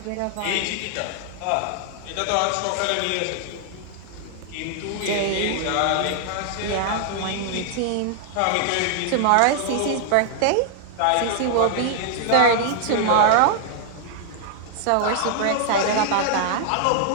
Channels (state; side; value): different; both; correlation -0.01